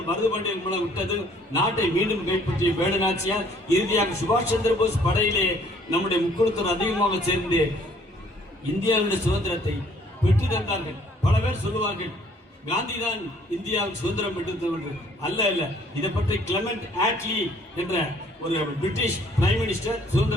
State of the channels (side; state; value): both; normal; correlation 0.60